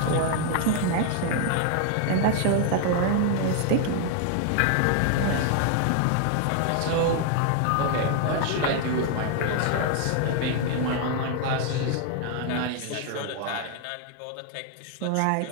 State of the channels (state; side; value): different; both; correlation 0.00